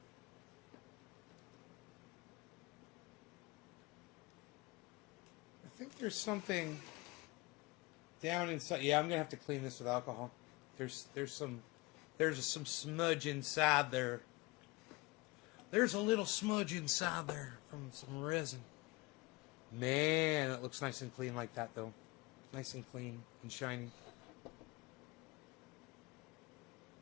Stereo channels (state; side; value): quieter; right; 24.1 dB